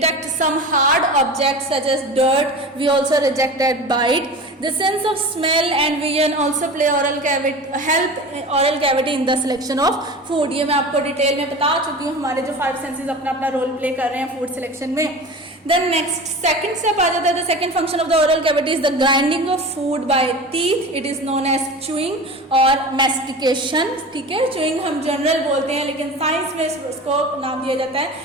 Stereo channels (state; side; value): normal; both; correlation 0.33